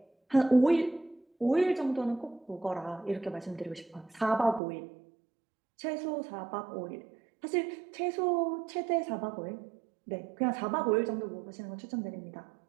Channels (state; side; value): drops out; left; at 4.6 s